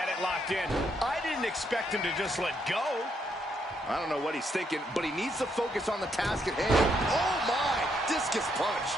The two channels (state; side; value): normal; both; correlation 0.75